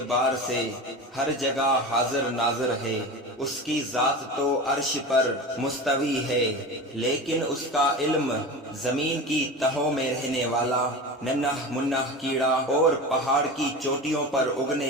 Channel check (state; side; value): normal; both; correlation 0.29